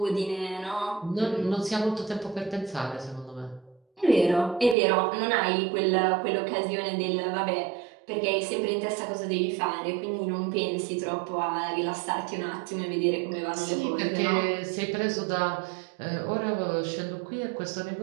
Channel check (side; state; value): left; drops out; at 4.8 s